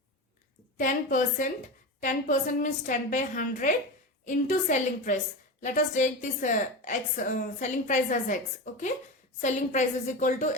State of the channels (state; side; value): normal; both; correlation 0.23